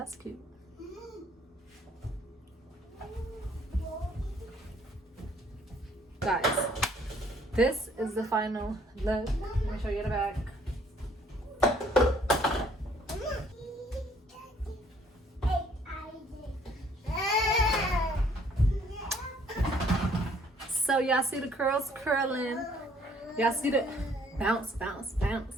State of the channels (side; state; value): both; normal; correlation 0.62